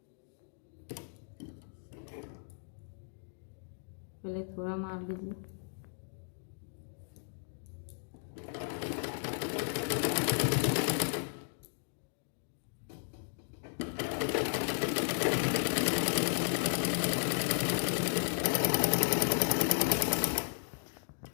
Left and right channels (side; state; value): right; silent; digital silence